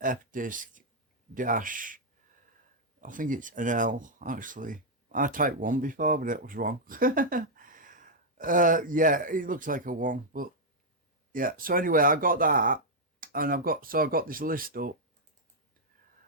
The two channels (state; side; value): normal; both; correlation -0.03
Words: fdisk dash. I think it's an L actually. I typed one before, but it was wrong. Yeah, it looks like a one, but yeah. So anyway, I got that, and I've got this list up.